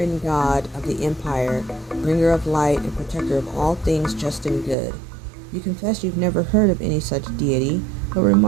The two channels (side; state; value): left; drops out; at 4.8 s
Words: god of the Empire, bringer of light and protector of all things just and good. You confess you've never heard of any such deity, but